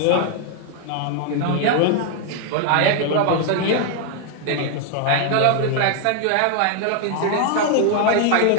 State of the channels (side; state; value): both; different; correlation 0.00